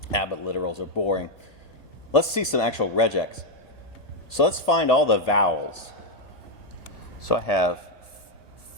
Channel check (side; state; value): right; late; 1.8 ms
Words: But literals are boring. Let's see some actual regex. So let's find all the vowels. So I have